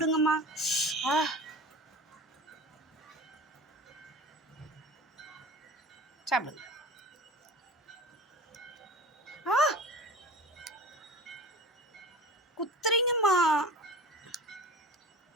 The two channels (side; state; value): both; normal; correlation 0.36